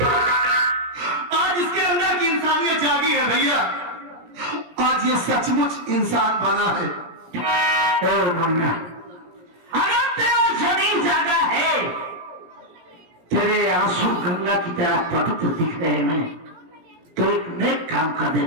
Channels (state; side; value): late; left; 17 ms